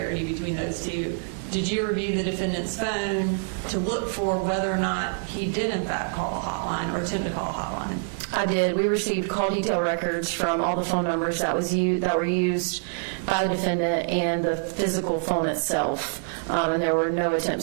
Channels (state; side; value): silent; left; digital silence